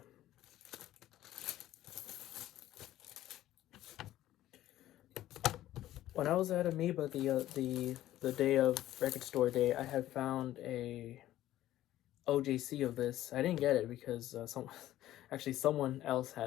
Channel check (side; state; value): right; quieter; 14.0 dB